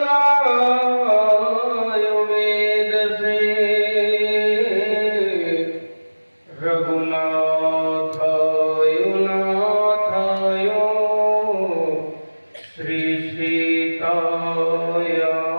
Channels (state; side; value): inverted; both; correlation -1.00